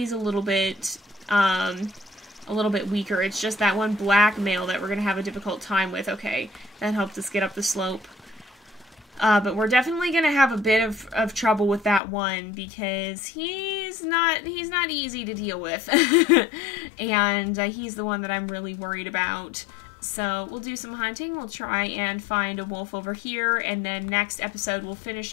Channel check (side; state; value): right; drops out; at 12.0 s